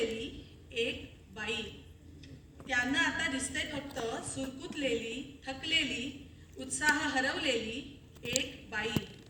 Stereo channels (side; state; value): both; identical; correlation 1.00